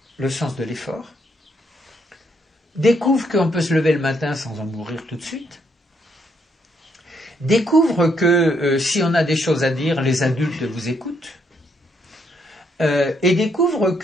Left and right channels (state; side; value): normal; both; correlation 0.73